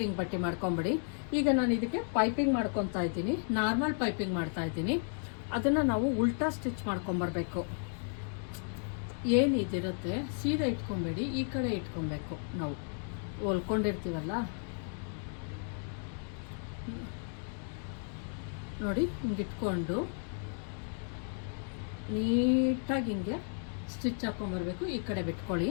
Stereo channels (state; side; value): silent; right; 55 dB below the other